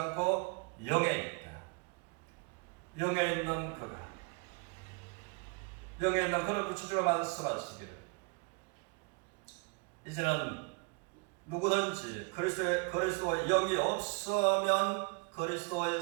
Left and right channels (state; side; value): quieter; left; 31.1 dB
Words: 영에 있다. 영에 있는 그가 영에 있는 그를 구체적으로 말씀하시기를 이제는 누구든지 그리스도의 영이 없으면 그리스도의